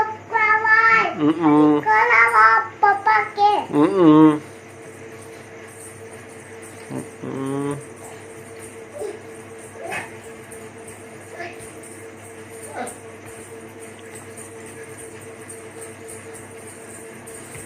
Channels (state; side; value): identical; both; correlation 1.00